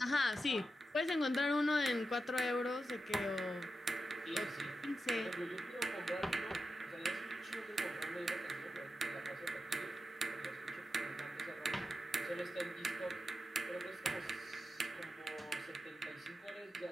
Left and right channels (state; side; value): normal; both; correlation 0.90